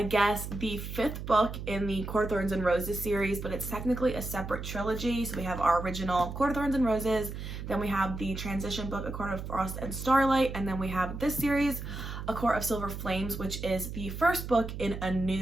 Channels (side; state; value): right; noise; hum, 7 dB below the sound